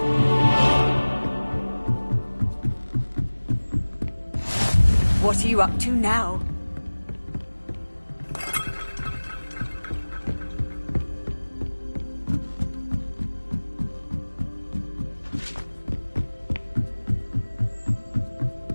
What are you up to now?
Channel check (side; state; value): both; inverted; correlation -1.00